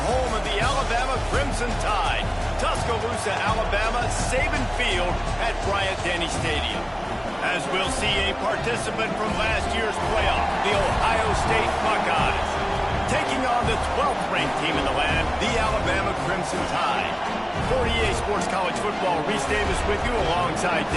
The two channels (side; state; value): both; identical; correlation 1.00